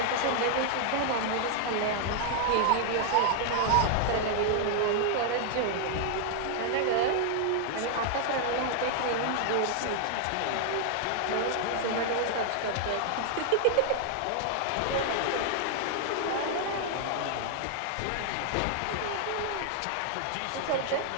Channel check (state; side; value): different; both; correlation 0.00